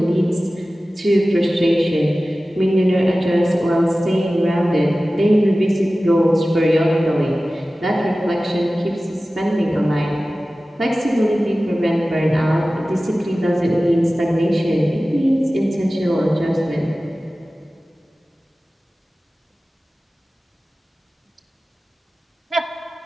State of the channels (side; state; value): both; normal; correlation 0.96